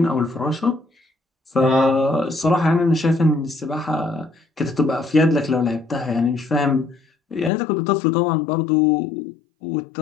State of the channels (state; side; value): drops out; right; at 7.5 s